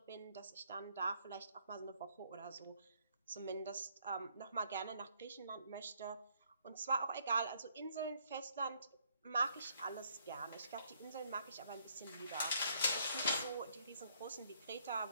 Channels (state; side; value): inverted; both; correlation -0.67